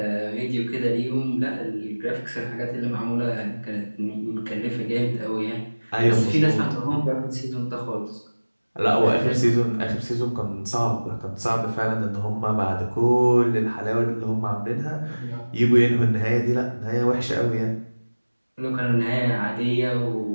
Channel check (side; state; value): both; inverted; correlation -1.00